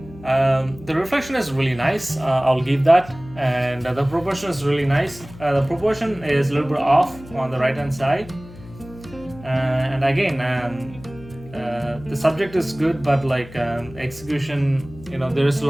The reflection is really nice, I'll give that, and the proportion is really nice. The proportion is a little bit off on the right hand side, and again, the subject is good, but like execution, there's a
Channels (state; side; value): noise; left; hum, 18 dB below the sound